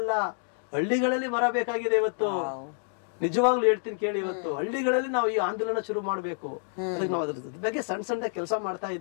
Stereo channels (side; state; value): right; silent; 59 dB below the other